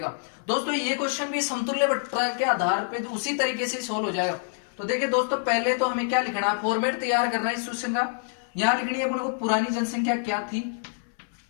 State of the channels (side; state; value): right; silent; 59 dB below the other